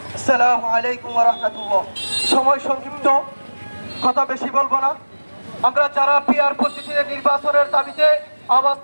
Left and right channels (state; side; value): inverted; both; correlation -1.00